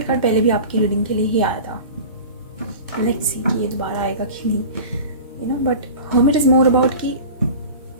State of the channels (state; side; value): inverted; both; correlation -0.36